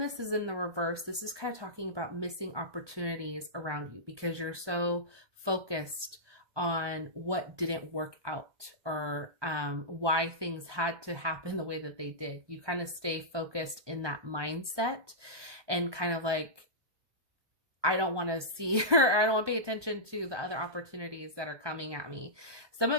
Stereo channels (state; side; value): late; left; 1.2 ms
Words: is in the reverse, this is kind of talking about missing opportunities around you because you're so focused on what didn't work out, or why things had to happen the way that they did. You kind of stay focused in that mindset and kind of like, I don't want to see or I don't want to pay attention to the other opportunities that are coming at me. Some